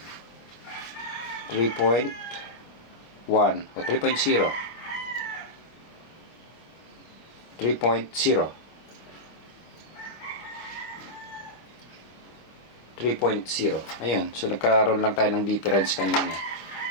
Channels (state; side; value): late; right; 25 ms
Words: 3.1 o 3.0. 3.0. 3.0. Ayun. So, nagkaroon lang tayo ng difference kanina.